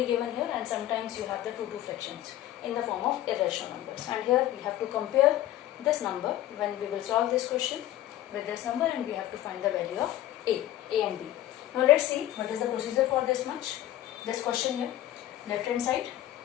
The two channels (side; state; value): right; quieter; 13.5 dB